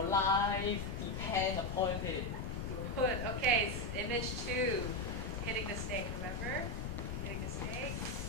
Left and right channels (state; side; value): noise; left; rumble, 6 dB below the sound